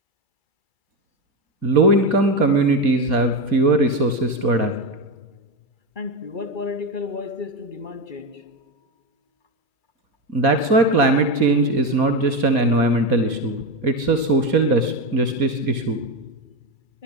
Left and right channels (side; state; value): right; late; 2.3 ms